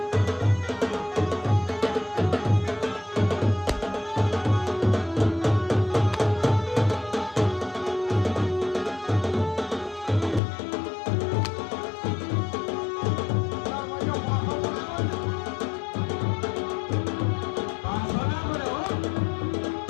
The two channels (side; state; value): right; drops out; at 10.4 s